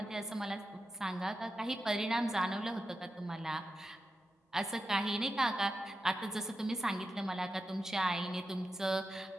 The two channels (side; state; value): both; normal; correlation 0.90